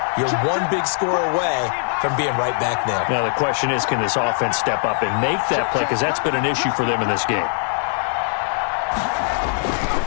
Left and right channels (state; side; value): silent; right; digital silence